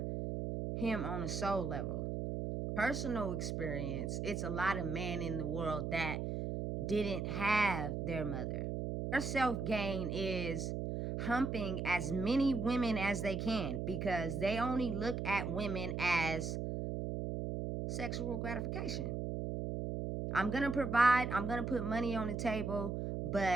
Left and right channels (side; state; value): right; noise; hum, 2 dB below the sound